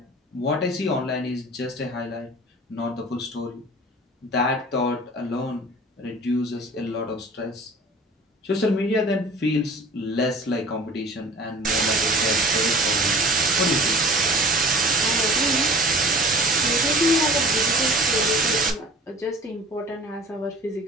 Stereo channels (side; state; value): both; normal; correlation 0.45